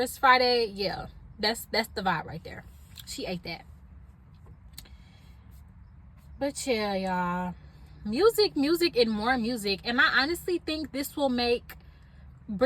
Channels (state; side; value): identical; both; correlation 1.00